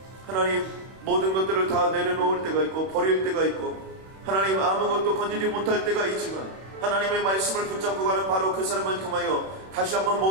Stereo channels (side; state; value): left; late; 31 ms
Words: 하나님 모든 것들을 다 내려놓을 때가 있고 버릴 때가 있고 하나님 아무것도 건지지 못할 때가 있지만 하나님의 말씀을 붙잡고 가는 바로 그 사람을 통하여 다시 한번